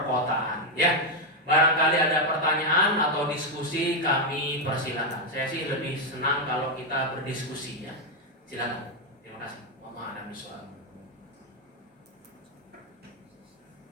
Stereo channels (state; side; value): normal; both; correlation 0.04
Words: ya. Barangkali ada pertanyaan atau diskusi, kami persilakan. Saya sih lebih senang kalau kita berdiskusi, ya. Silakan. Terima kasih. Mohon ada soal.